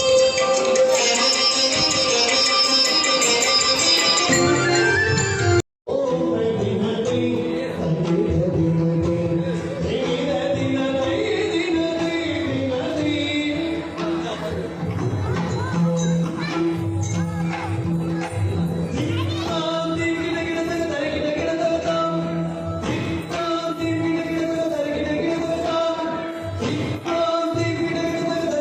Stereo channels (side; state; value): both; identical; correlation 1.00